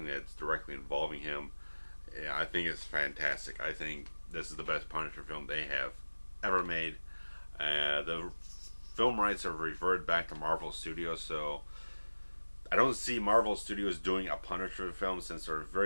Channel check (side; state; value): both; inverted; correlation -1.00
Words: that's directly involving him, I think is fantastic. I think this is the best Punisher film they have ever made. The film rights have reverted back to Marvel Studios, so I don't see Marvel Studios doing a Punisher film, since they're